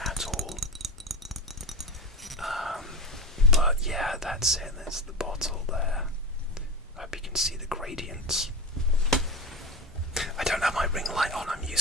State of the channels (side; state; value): both; normal; correlation 0.23